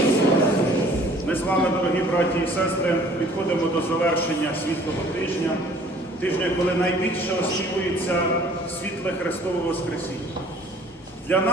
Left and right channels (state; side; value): normal; both; correlation 0.54